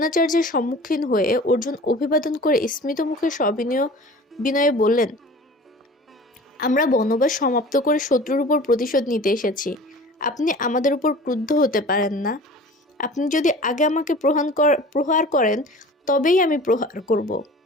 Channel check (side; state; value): both; normal; correlation 0.42